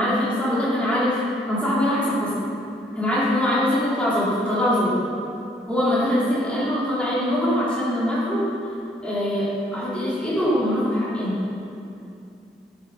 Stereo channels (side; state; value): both; normal; correlation 0.64